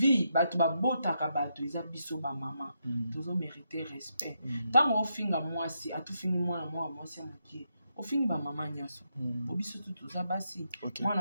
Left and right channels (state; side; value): inverted; both; correlation -0.81